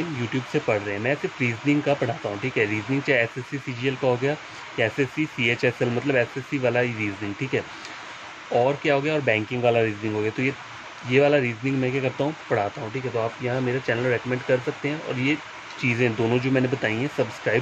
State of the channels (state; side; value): identical; both; correlation 1.00